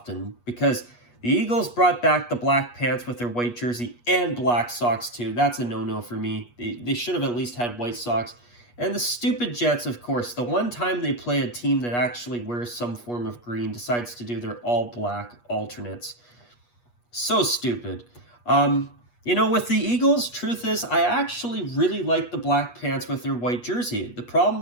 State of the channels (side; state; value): right; late; 8.3 ms